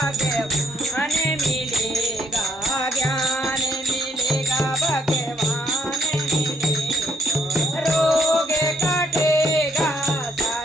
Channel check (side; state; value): both; normal; correlation 0.69